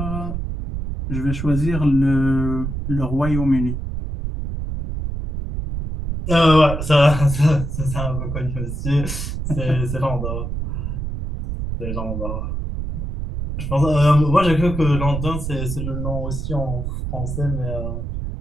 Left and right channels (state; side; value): noise; right; rumble, 4 dB below the sound